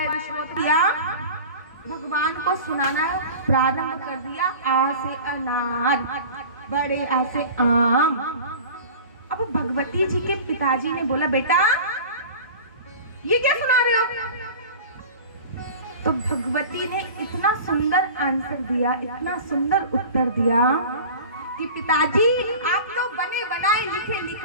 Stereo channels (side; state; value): both; inverted; correlation -0.38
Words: विश्वोत्तरिया भगवान को सुनाना प्रारंभ कर दिया। आ से अनार, बड़े आ से आम। अब भगवती जी के पिताजी ने बोला, बेटा ये क्या सुना रहे हो। तो भगवती ने इतना सुंदर आंसर दिया, इतना सुंदर उत्तर दिया कि पिताजी आप तो बने बनाए लिखे